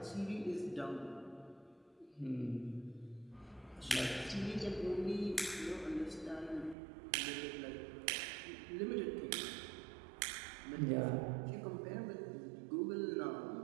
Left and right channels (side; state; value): left; drops out; at 6.8 s